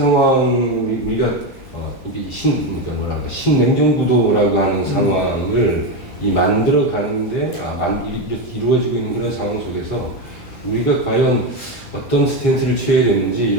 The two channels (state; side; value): normal; both; correlation 0.13